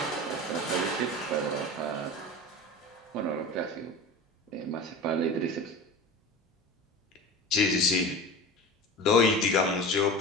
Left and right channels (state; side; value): normal; both; correlation 0.33